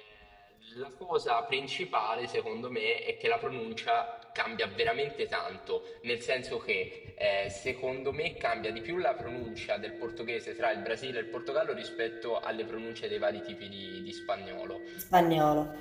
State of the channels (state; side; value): identical; both; correlation 1.00